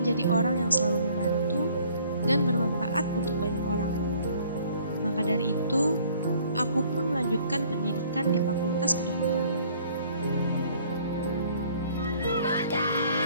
orang yang selalu membantu dan bermanfaat untuk banyak orang. Maka dari itu, aku pun melanjutkan pendidikan di Fakultas Kedokteran.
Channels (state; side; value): inverted; both; correlation -0.58